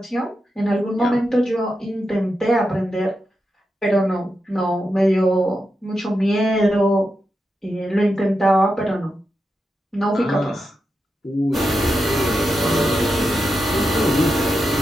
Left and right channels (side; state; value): both; normal; correlation 0.88